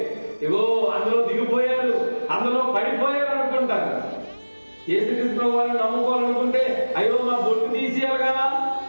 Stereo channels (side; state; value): both; inverted; correlation -1.00